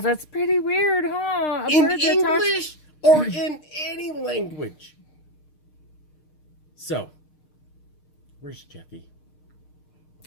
pretty weird, huh? in English or in any language. So, where's Jeffy?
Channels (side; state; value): right; late; 6.6 ms